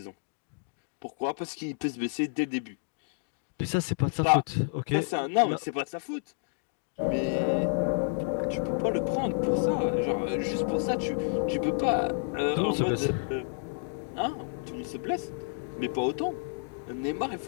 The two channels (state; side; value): silent; right; digital silence